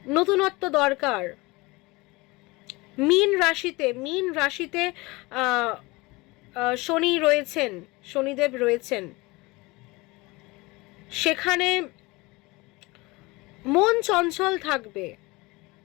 নতুনত্ব দরকার। মীন রাশিতে শনি রয়েছেন, শনিদেব রয়েছেন, সেখানে মন চঞ্চল থাকবে,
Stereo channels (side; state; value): right; quieter; 23.5 dB